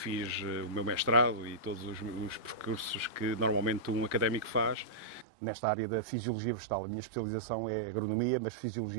o meu mestrado e todos os percursos que normalmente um académico faz nesta área da fisiologia vegetal. A minha especialização é agronomia, mas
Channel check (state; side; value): drops out; left; at 5.2 s